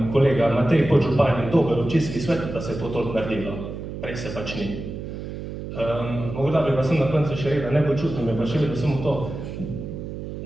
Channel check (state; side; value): noise; right; hum, 8 dB below the sound